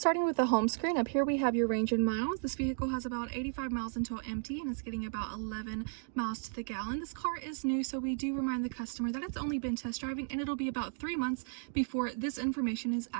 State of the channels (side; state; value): left; silent; digital silence